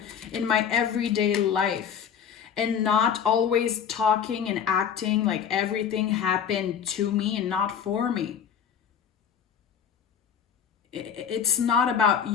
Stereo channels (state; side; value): quieter; right; 7.9 dB